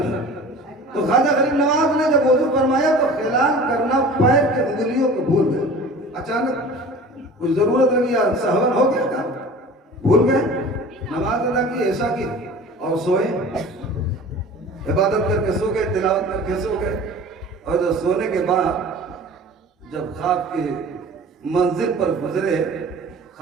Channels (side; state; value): both; normal; correlation 0.41